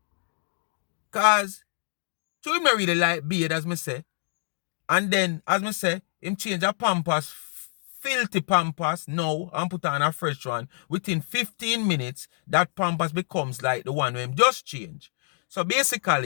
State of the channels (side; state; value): right; silent; 61 dB below the other